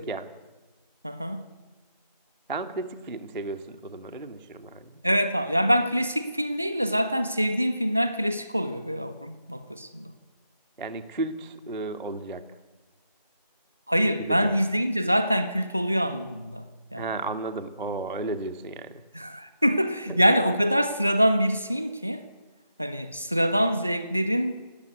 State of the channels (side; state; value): both; inverted; correlation -0.86